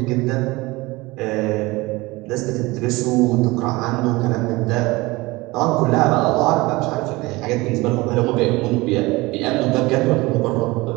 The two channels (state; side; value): quieter; left; 22.0 dB